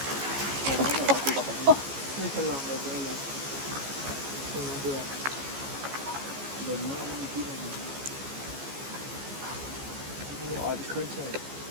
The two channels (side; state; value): left; late; 15 ms